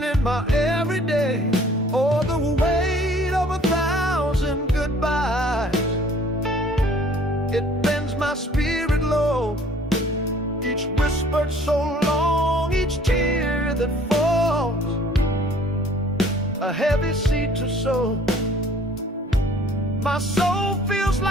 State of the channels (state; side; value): normal; both; correlation 0.54